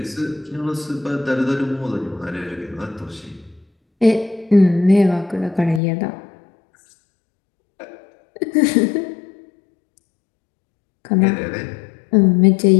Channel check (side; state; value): right; drops out; at 5.8 s